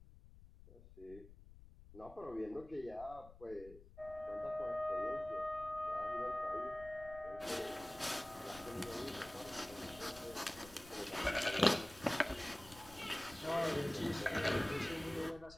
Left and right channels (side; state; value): left; noise; rumble, 18 dB below the sound